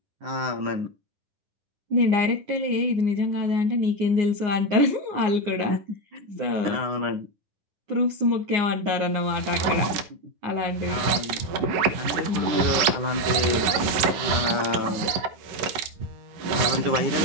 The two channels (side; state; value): left; late; 11 ms